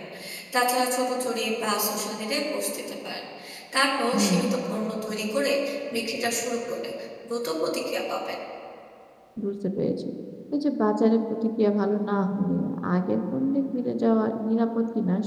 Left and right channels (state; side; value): identical; both; correlation 1.00